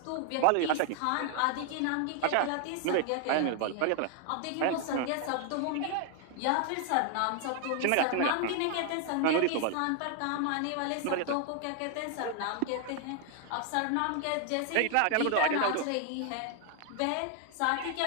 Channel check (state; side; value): different; both; correlation 0.00